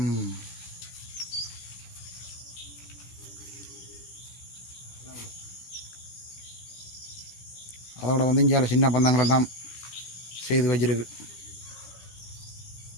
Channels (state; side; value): late; right; 17 ms